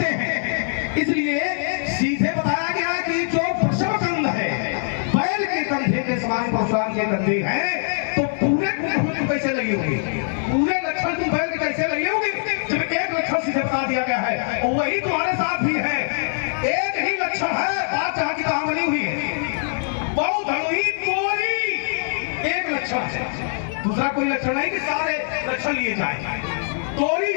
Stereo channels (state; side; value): silent; right; digital silence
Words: हैं। इसलिए सीधे बताया गया कि जो वृषभ कंध है बैल के कंधे के समान परशुराम के कंधे हैं, तो पूरे तुम कैसे लगे होंगे? पूरे लक्षण तुम बैल के कैसे लगे होंगे जब एक लक्षण सीधे बता दिया गया है और वही तुम्हारे साथ भी है। एक ही लक्षण है, बात जहां की कहां बनी हुई है। बहु धनुही तोरी एक लक्षण है, दूसरा कोई लक्षण नहीं कि सारे लक्षण लिए जाए। तोरी